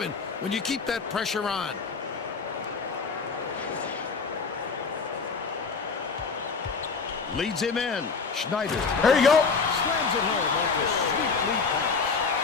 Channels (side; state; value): right; quieter; 4.9 dB